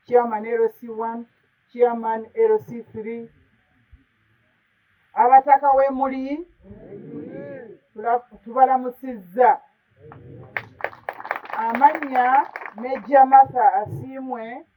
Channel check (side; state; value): both; identical; correlation 1.00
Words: chairman LC1, chairman LC3, abataka w'emuli tubalamusizza. Amannya Meja Martha asiimwe